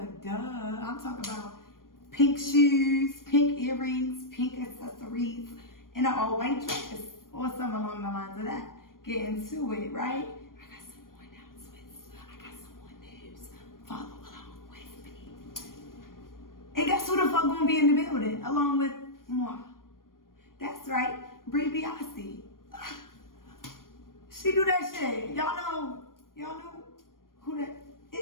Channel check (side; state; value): right; late; 0.91 ms